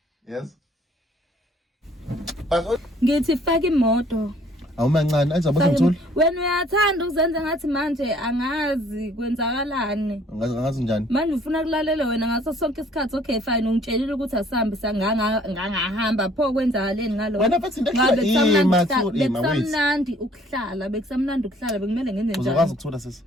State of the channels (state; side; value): normal; both; correlation 0.59